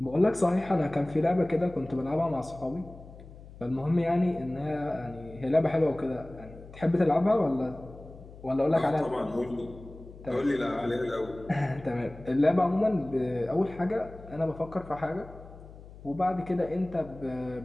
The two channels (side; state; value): left; noise; hum, 18 dB below the sound